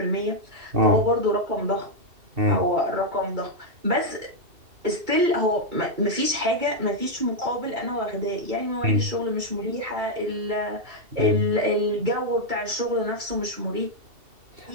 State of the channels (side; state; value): left; late; 2.7 ms